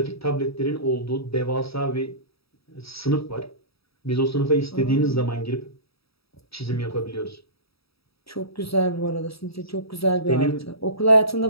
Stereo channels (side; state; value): right; late; 0.77 ms